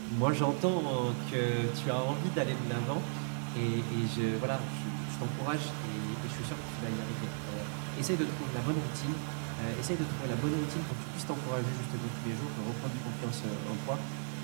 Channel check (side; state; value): left; silent; digital silence